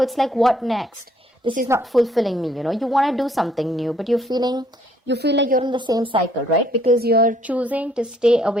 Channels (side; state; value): both; normal; correlation 0.65